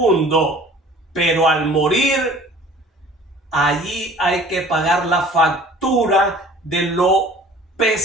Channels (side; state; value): both; normal; correlation 0.48